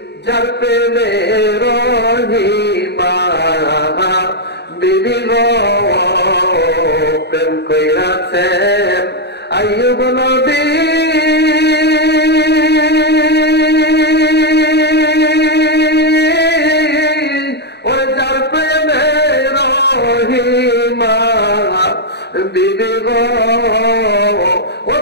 যার প্রেমে রহিমা বিবি গো। প্রেম কইরাছেন আইয়ুব নবী, ওই যার প্রেমে রহিমা বিবি গো, ও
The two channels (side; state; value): right; late; 0.49 ms